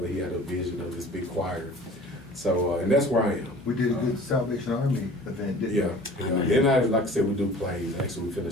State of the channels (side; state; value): both; normal; correlation 0.46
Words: He had a vision of this big choir. So, and that's where I am. We did a good Salvation Army event, didn't we? And like I said, we do plays. Actually, we're finna